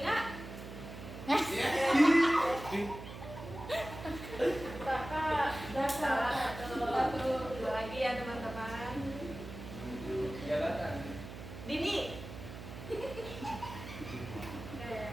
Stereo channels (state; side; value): noise; right; hum, 11 dB below the sound